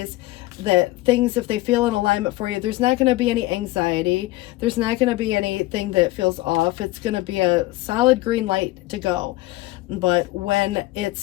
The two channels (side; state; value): right; quieter; 18.9 dB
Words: that things, if they feel in alignment for you, there's not going to be any anxiety. There's not going to be anything that feels off. It's going to be a solid green light to go. But when